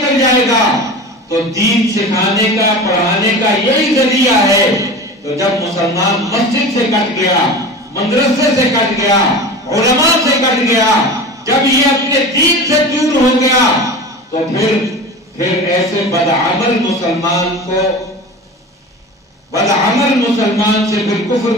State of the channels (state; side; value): normal; both; correlation 0.33